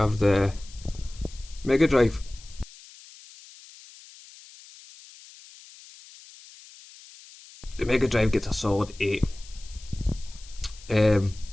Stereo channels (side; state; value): left; noise; hiss, 21 dB below the sound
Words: the Mega Drive. The Mega Drive gets a solid 8.